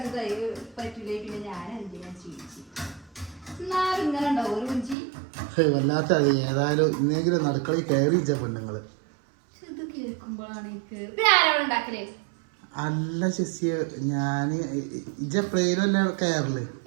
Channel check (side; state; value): left; drops out; at 5.0 s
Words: പറ്റില്ല. പിന്നെ ഞാൻ എന്തിനാ ചോദിച്ചു ഇങ്ങനെ ഉണ്ടാവും ഒരു കുഞ്ചി. വല്ലാത്ത അത് ഏതായാലും ഇന്നെങ്കിലും നടക്കളി കയറിച്ച പെണ്ണുങ്ങള്. അല്ല ശശിയ, ഞാന് ഇജപ്ലേനല്ല കയറല്.